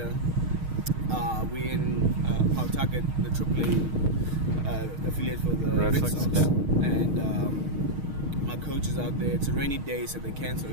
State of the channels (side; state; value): left; late; 6.4 ms